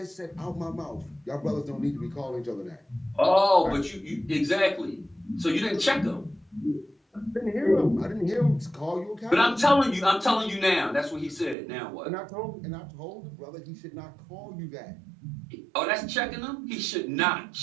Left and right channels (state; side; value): drops out; left; at 11.6 s